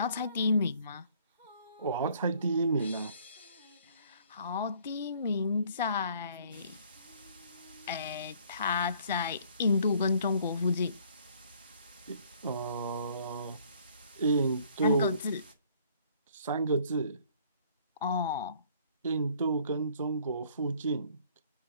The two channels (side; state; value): both; inverted; correlation -0.59